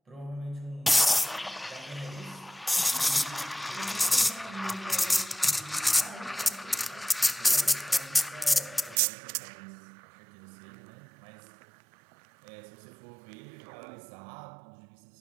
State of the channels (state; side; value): drops out; left; at 9.0 s